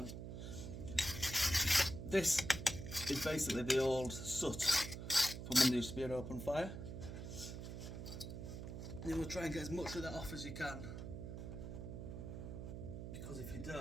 This is basically the old soot from when there used to be an open fire. You will try and get as much of that off as you can, because if you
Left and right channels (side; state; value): right; noise; hum, 8 dB below the sound